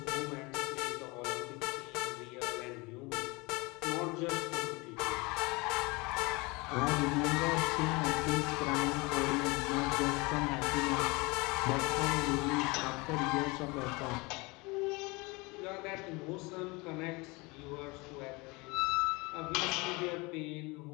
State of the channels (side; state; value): right; quieter; 25.6 dB